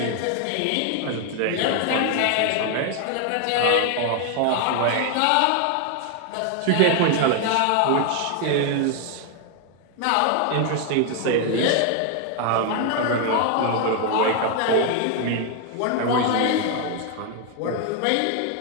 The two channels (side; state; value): both; different; correlation 0.00